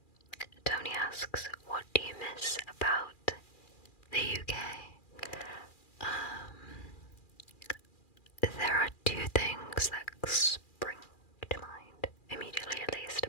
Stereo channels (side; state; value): right; late; 2.4 ms